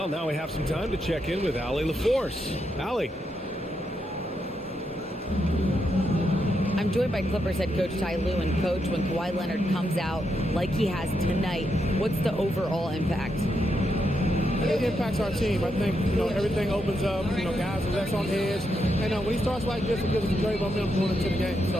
now we have some time to check in with Allie LaForce. Allie. I'm joined by Clippers head coach Ty Lue. And coach, when Kawhi Leonard comes out like he has tonight, what's the overall impact? It impacts our team. I think, everything opens up. Guys are less on edge. And when he starts like this, it gives us a great momentum going into the game.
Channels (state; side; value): normal; both; correlation 0.82